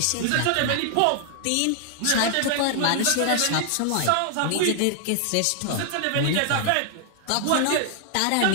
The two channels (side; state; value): both; different; correlation 0.00